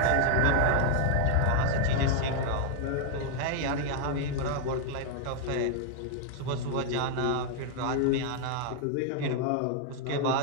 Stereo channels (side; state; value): both; different; correlation 0.00